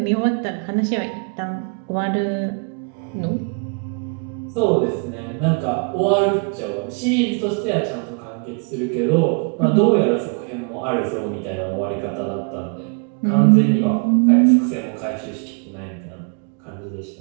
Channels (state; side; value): quieter; left; 36.5 dB